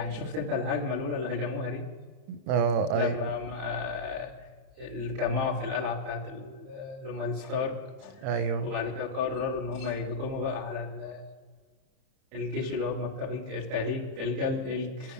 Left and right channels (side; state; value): left; late; 31 ms